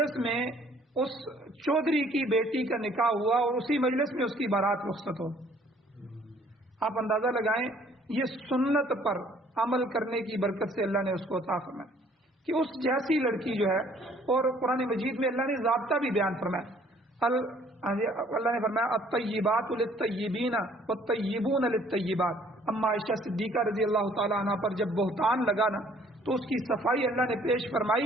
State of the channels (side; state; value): both; normal; correlation 0.59